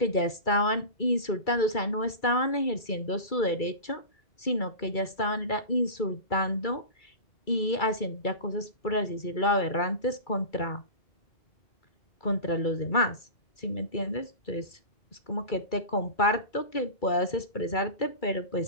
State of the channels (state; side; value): late; right; 2.3 ms